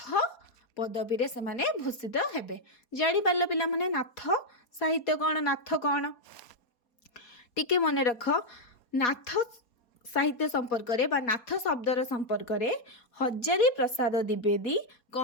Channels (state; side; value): late; right; 4.2 ms